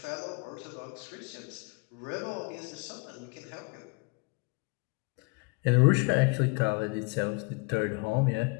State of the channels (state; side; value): quieter; right; 30.6 dB